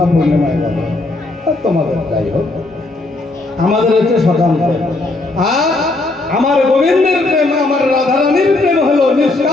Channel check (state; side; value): quieter; right; 3.0 dB